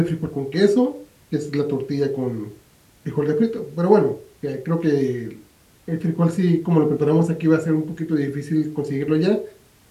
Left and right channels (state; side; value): identical; both; correlation 1.00